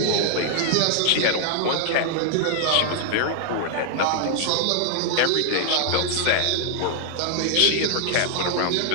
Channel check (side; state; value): both; different; correlation 0.00